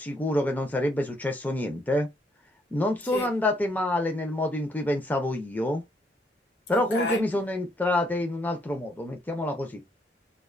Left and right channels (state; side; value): normal; both; correlation 0.71